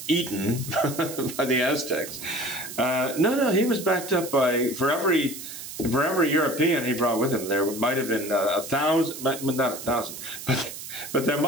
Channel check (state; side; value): noise; right; hiss, 11 dB below the sound